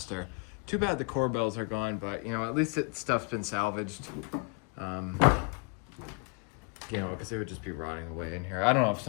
Too bad the corbels are gone, but you know, at least stuff's been salvaged. You know, because it would just be rotting away in here. I don't know if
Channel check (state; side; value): quieter; right; 32.8 dB